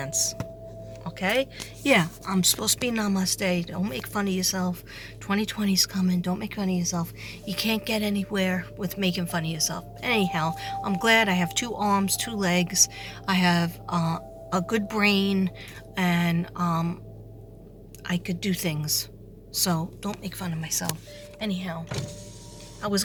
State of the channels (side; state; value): both; identical; correlation 1.00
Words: Okay? Yeah, I'm supposed to be namaste. Don't make fun of yourself. 2020's coming. Don't make fun of yourself. You can't get anywhere with making fun of yourself. Anyhow, I'm glad I have 2 arms, 2 legs. I have a good brain, and I could do things. So don't make fun of myself. Anyhow, I was